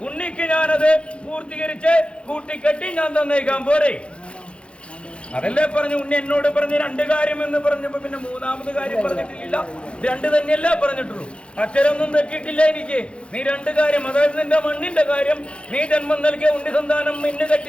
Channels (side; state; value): right; late; 0.058 ms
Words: ഉണ്ണിക്ക് ഞാനത് പൂർത്തീകരിച്ച് കൂട്ടിക്കെട്ടി ഞാൻ തന്നേക്കാൻ പോരെ. അതല്ലേ പറഞ്ഞു. ഉണ്ണി എന്നോട് പറഞ്ഞ് 2 കാര്യം എന്ന് പറഞ്ഞപ്പോ പിന്നെ 3ാമത് കാര്യം പറഞ്ഞിട്ടില്ല. 2 തന്നെയല്ലേ പറഞ്ഞിട്ടുള്ളൂ. അക്ഷരമൊന്നും തെറ്റിയിട്ടില്ല എനിക്ക്. നീ 2 കാര്യം, അതായത് നിന്റെ മണ്ണിന്റെ കാര്യം, നീ ജന്മം നൽകിയ ഉണ്ണി സന്താനം മിന്നു